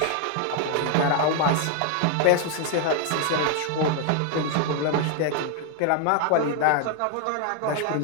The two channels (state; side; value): different; both; correlation 0.00